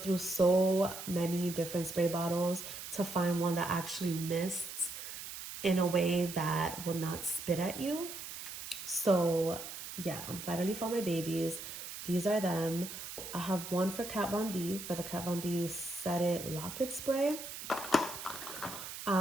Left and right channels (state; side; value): noise; right; hiss, 9 dB below the sound